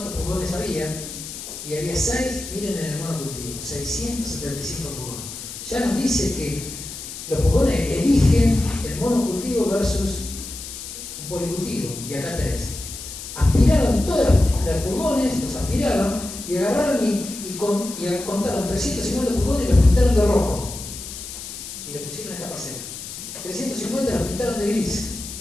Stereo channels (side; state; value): left; noise; hiss, 10 dB below the sound